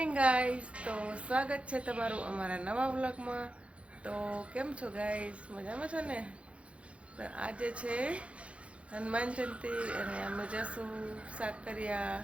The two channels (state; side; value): late; left; 0.062 ms